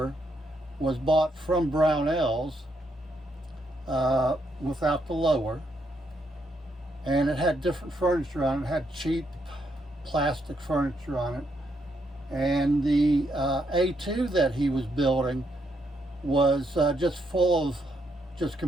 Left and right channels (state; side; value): normal; both; correlation 0.77